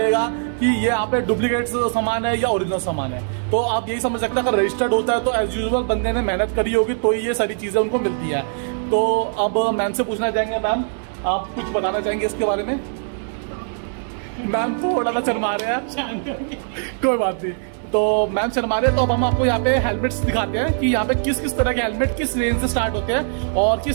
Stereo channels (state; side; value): silent; left; digital silence